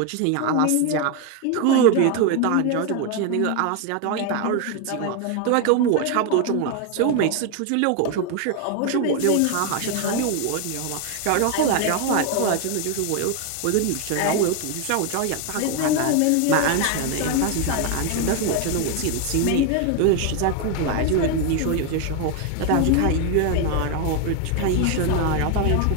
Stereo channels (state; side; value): different; both; correlation 0.01